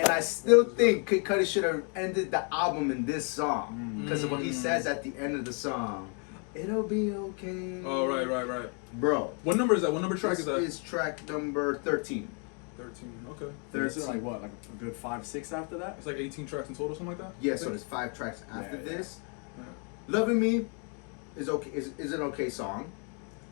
I still think Kid Cudi should have ended the album in this song because of what he says at the end of the song. It'll be okay. Oh, right. Bro. What number is that? What number track This is that? is track number 13. 13. Okay. This is like what, like a good 5-6 after that? It's like 18 tracks in total, something like that? Yeah, so there's 5 tracks after Yeah. this. Yeah. Loving Me is okay. Is an okay song.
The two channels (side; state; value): right; quieter; 38.7 dB